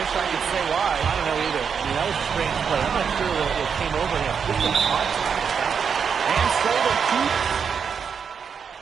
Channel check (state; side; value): quieter; left; 6.6 dB